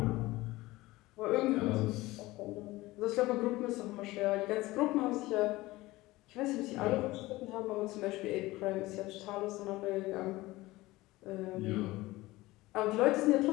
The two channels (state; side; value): quieter; right; 19.2 dB